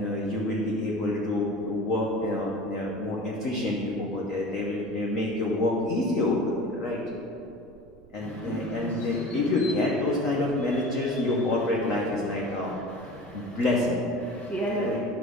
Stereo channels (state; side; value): noise; right; rumble, 26 dB below the sound